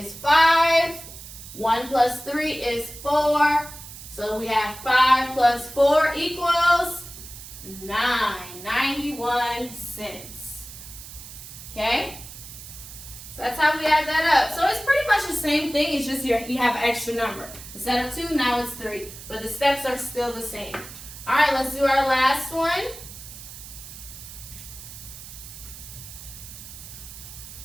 5. 1 plus 3 is 4. So we have 5 plus 4 equals 9. 91 cents. Okay? So that's how we add that up. So it's pretty much the same thing. It's just you have an extra number. Instead of 2, now it's 3. But the steps are still the same. All right, let's do our last one.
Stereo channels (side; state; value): right; noise; hiss, 14 dB below the sound